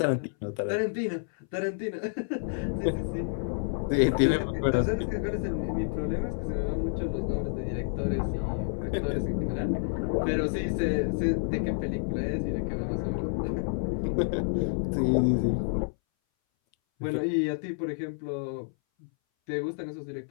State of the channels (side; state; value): right; silent; 58 dB below the other